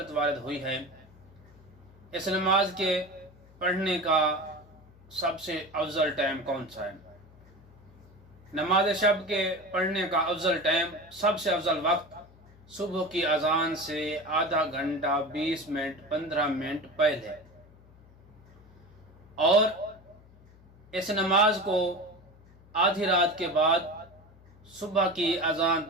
وارد ہوئی ہے۔ اس نماز کے پڑھنے کا سب سے افضل ٹائم کون سا ہے؟ نماز شب کے پڑھنے کا افضل ٹائم، سب سے افضل وقت صبح کی اذان سے آدھا گھنٹہ 20 منٹ 15 منٹ پہلے، اور اس نماز کو آدھی رات کے بعد صبح کی اذان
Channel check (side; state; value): left; noise; hum, 25 dB below the sound